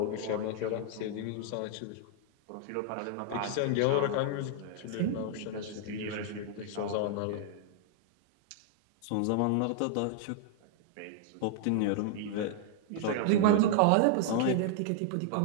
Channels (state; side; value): different; both; correlation -0.01